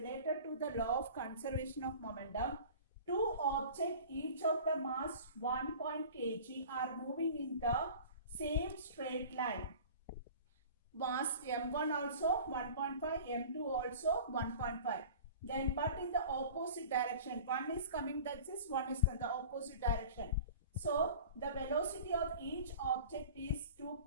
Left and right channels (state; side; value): inverted; both; correlation -0.41